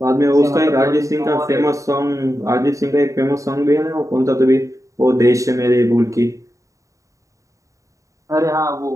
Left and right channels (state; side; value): late; left; 0.16 ms